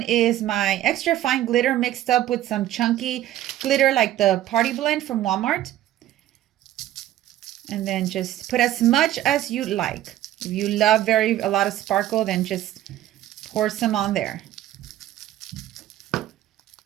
is my extra fine glitter mixed up with some chunky glitter like the Party Blend from Walmart. And then just put as much as you like. If you love a lot of sparkle, then just pour some on there.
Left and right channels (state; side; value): quieter; left; 13.3 dB